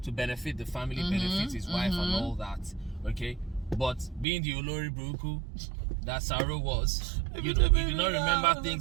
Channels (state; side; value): drops out; left; at 4.2 s